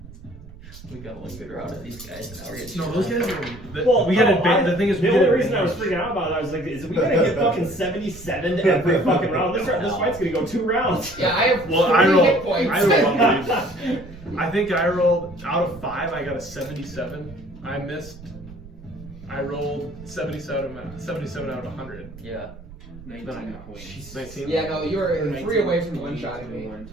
We got one good route of these guys, and now we're getting. No, those guys are. Well, we got advantage. The thing is, we the get only reason I was advantage. freaking out about it, I was like, is we gonna get fucking 77 every fucking round? This fight's gonna go 2 rounds. Yeah, I have Well, 3 I hit rolled. points. I think I rolled out of 5. I got a 77. I missed. I rolled 77 out of 100. Yeah. 19 points. 19. Yeah, no, you were 3 away from one-shotting me.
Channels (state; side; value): noise; right; rumble, 17 dB below the sound